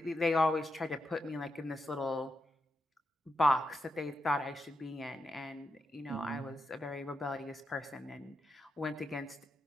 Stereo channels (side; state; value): both; normal; correlation 0.85